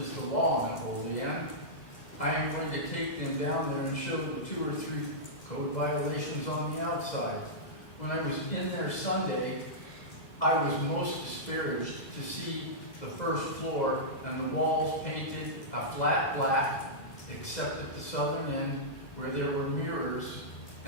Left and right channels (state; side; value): late; right; 2.0 ms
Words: is the law in Olean, I am going to take them down there and show the 2 or 3 code violations on the outside. When I was in there Sunday, I was most disparaged to see the first floor and the walls painted a flat black, except at the southern end where there were mirrors